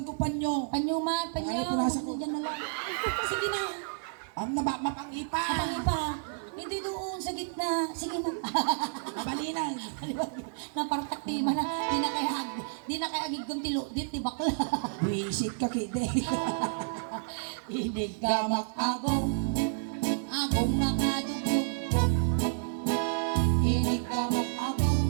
ko panyo. Panyuman, panyo. Ano, punasan ko. Diyan na lang. Sige na. Mapangipa. Kapang pa. Hindi doon sa gitna. Sige na. Mabalinan. Napartak di man na. Di na kaya agig kong tilo. Di bakla. Visit ka kide. Inigamak agong. Agong nakadugdugdug. Inigamak agong.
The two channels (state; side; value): silent; left; 58 dB below the other